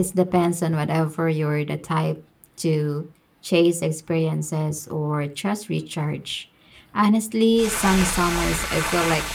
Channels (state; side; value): identical; both; correlation 1.00